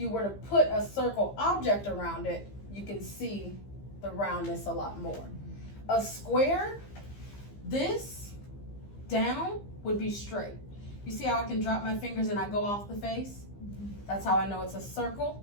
were to put a circle object around it, you can see the roundness a lot more. A square, this down would be straight. You see how I can drop my fingers and I go off the face? That's how I know it's a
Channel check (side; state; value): right; late; 15 ms